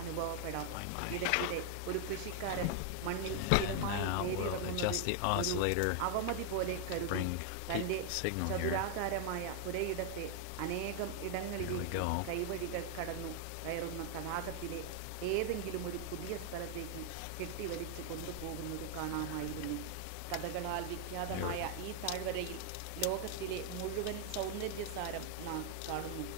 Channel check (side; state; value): both; different; correlation 0.00